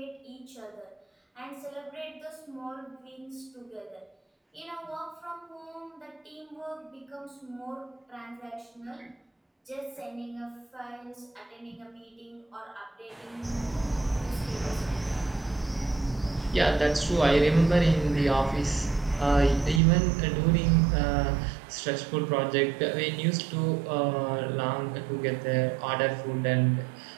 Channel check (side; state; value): left; drops out; at 19.8 s